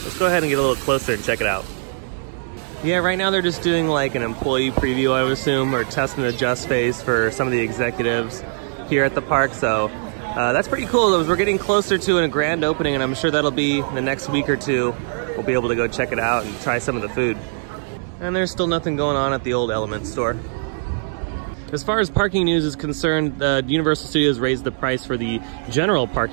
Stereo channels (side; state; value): left; silent; 65 dB below the other